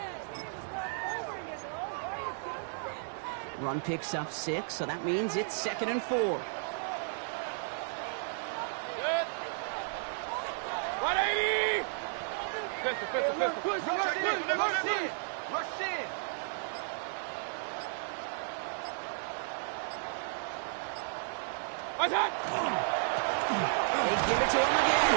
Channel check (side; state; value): left; silent; digital silence